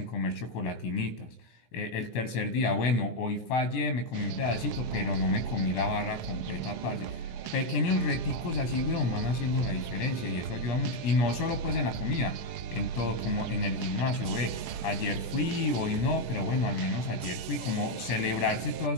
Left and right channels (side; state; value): right; late; 17 ms